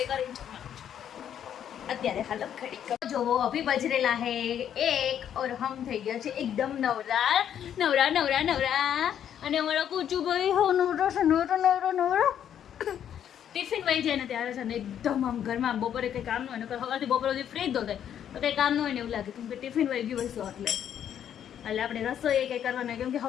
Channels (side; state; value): right; quieter; 9.6 dB